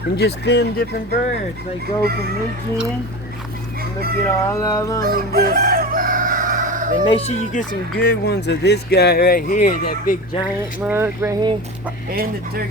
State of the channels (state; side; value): normal; both; correlation 0.29